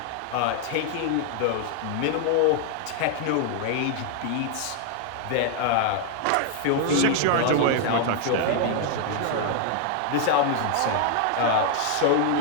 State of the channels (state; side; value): different; both; correlation 0.00